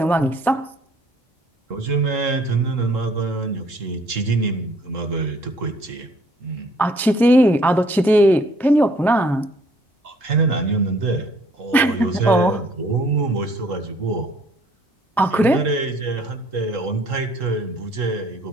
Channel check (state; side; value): normal; both; correlation 0.61